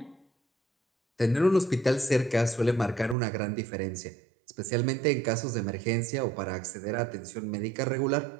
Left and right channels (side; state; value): left; drops out; at 3.2 s